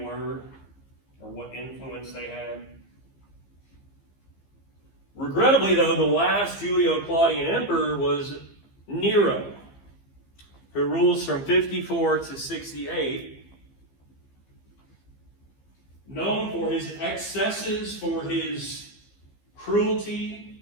were or what influence they had. Regrettably, though, the last Julio-Claudian emperor was Nero, who rules from 54 to 68. Known for his excesses, for his cruelty,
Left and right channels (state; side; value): late; right; 15 ms